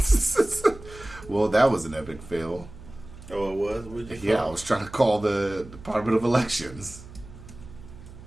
Well, that was an epic fail. Oh, it was? Yeah, I was trying to call the Department of Elections.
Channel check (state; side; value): noise; right; hum, 17 dB below the sound